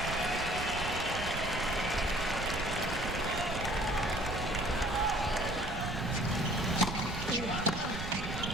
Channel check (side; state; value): right; noise; rumble, 6 dB below the sound